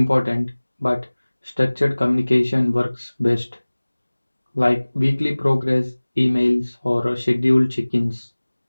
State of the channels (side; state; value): both; inverted; correlation -1.00